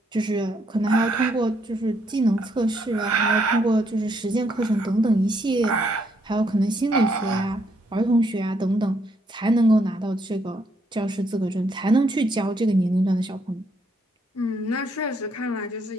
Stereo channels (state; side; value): normal; both; correlation 0.73